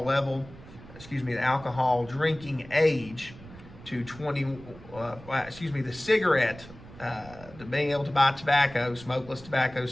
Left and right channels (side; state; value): right; noise; rumble, 18 dB below the sound